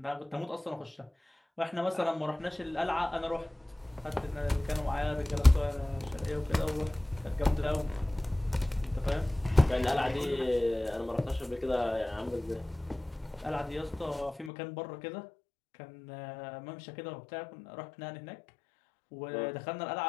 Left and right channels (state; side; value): drops out; right; at 14.5 s